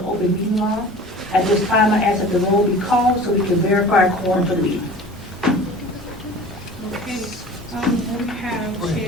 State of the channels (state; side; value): normal; both; correlation 0.41